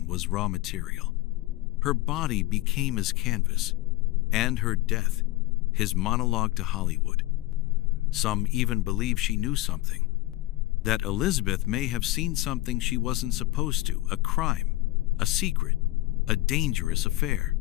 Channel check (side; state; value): right; quieter; 18.5 dB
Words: was raw material. Her body became his canvas, and her death, his monologue to Hollywood. Some even believe she knew something, that Elizabeth may have seen something she wasn't supposed to, a crime, a secret, a dangerous affair.